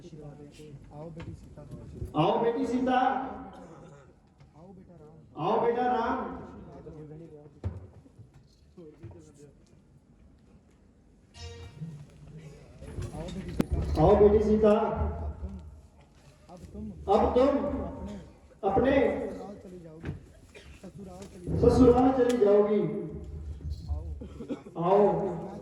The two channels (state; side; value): identical; both; correlation 1.00